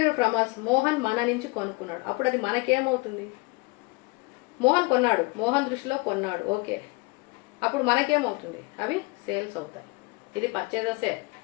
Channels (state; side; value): quieter; right; 26.8 dB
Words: from us. Mohan మన నుంచి కొనుక్కున్నాడు. అప్పుడు అది మనకేమవుతుంది? మోహన్ కొన్నాడు, మోహన్ దృష్టిలో కొన్నాడు, ఓకే. అప్పుడు మనకేమవుతుంది? అవి సేల్స్ అవుతాయి. ఇది పర్చేజెసే.